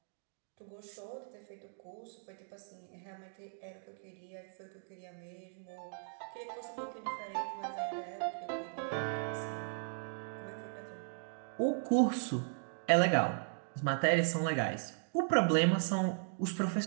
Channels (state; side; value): silent; left; digital silence